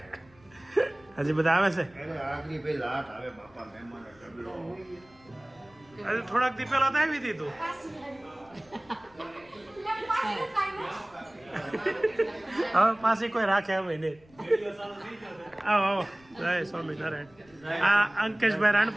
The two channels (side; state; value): left; noise; rumble, 28 dB below the sound